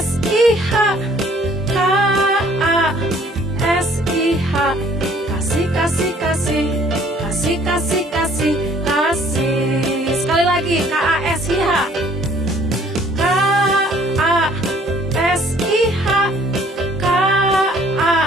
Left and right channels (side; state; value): both; normal; correlation 0.58